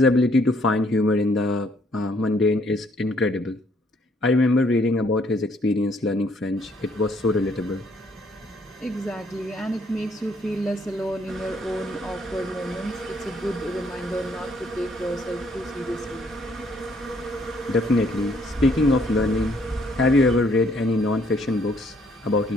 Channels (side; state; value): both; normal; correlation 0.67